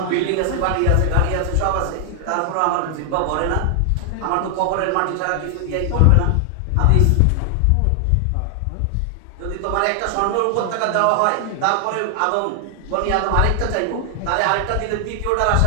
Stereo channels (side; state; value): both; different; correlation 0.00